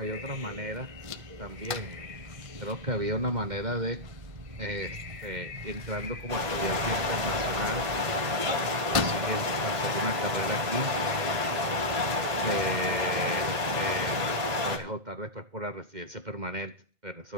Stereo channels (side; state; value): left; late; 1.8 ms